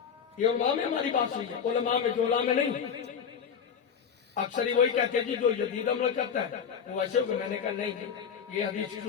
یہ علماء میں ہماری بات ہوئی ہے. علماء میں جولا میں نہیں. اکثر ہی وہی کہتے ہیں جی جو جدید عمل کرتا ہے وہ ایسے ہوگا. میں نے کہا نہیں، یہ حدیث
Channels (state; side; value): quieter; right; 7.3 dB